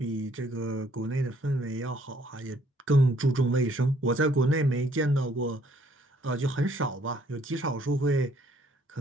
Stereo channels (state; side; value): normal; both; correlation 0.64